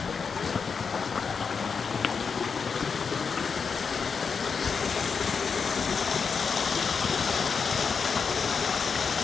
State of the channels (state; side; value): quieter; right; 5.7 dB